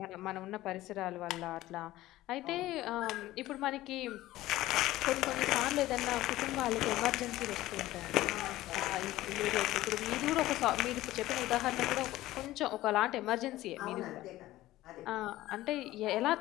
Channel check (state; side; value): quieter; right; 16.2 dB